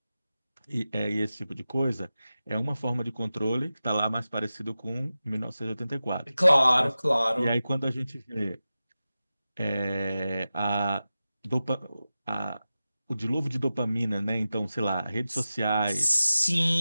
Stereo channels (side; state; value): both; inverted; correlation -0.94